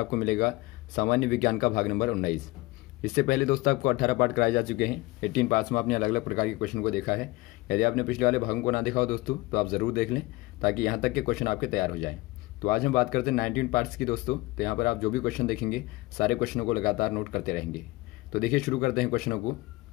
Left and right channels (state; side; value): quieter; right; 21.0 dB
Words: मिलेगा सामान्य विज्ञान का भाग नंबर 19। इससे पहले दोस्तों आपको 18 पार्ट कराए जा चुके हैं। 18 पार्ट्स में आपने अलग अलग प्रकार के क्वेश्चन को देखा है। यदि आपने पिछले वाले भागों को ना देखा हो दोस्तों तो आप जरूर देख लें, ताकि यहाँ तक के क्वेश्चन आपके तैयार हो जाए। तो आज हम बात करते हैं 19 पार्ट्स की दोस्तों। तो यहाँ पर आप जो भी क्वेश्चन देखेंगे सारे क्वेश्चनों को लगातार नोट करते रहेंगे। तो देखिए, शुरू करते हैं क्वेश्चनों को।